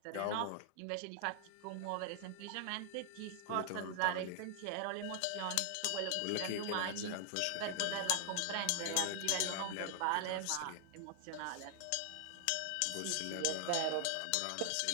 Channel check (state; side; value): different; both; correlation 0.00